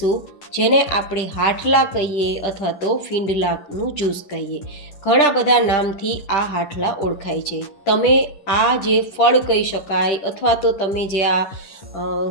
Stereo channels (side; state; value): right; late; 11 ms